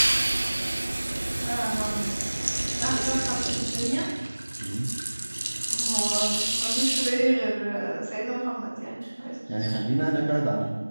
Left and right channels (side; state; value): both; inverted; correlation -1.00